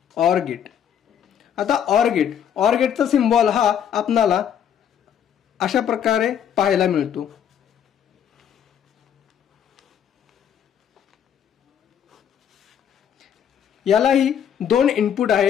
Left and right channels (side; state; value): right; quieter; 8.9 dB